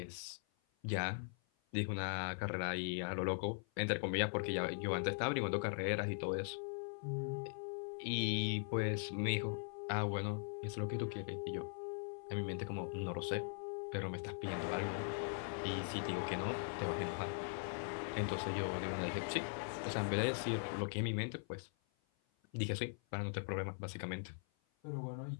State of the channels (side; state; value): right; silent; 50 dB below the other